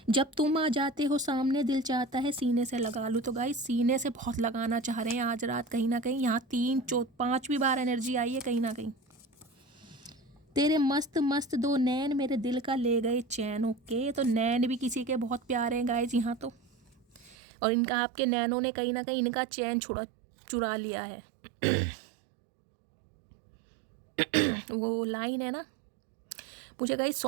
जब तुम आ जाते हो सामने, दिल चाहता है सीने से लगा लूँ। तो गाइस सीने से बहुत लगाना चाह रहे हैं आज रात कहीं ना कहीं। यहाँ 3, 4, 5वीं बार एनर्जी आई है कहीं ना कहीं। तेरे मस्त मस्त 2 नैन मेरे दिल का ले गए चैन। ओके, तो नैन भी किसी के बहुत प्यारे हैं गाइस यहाँ तो। और इनका आपके नैनों ने कहीं ना कहीं इनका चैन चुरा लिया है। वो लाइन है ना, मुझे गाइस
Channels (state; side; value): drops out; left; at 17.4 s